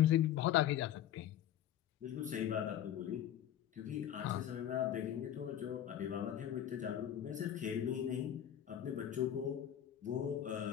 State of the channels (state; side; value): quieter; right; 10.9 dB